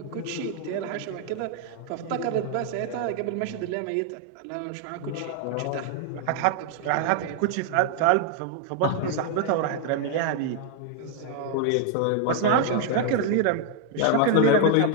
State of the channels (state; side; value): different; both; correlation 0.00